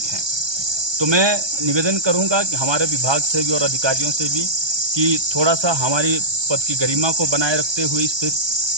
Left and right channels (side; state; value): left; late; 1.2 ms